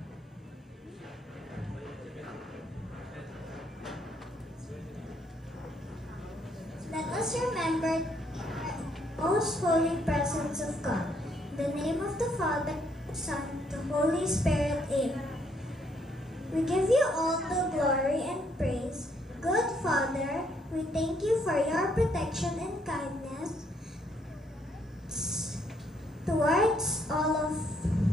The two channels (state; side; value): normal; both; correlation 0.70